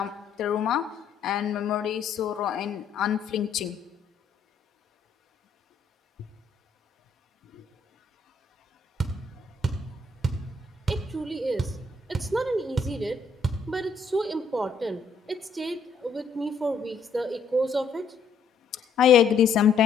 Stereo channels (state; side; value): quieter; right; 4.5 dB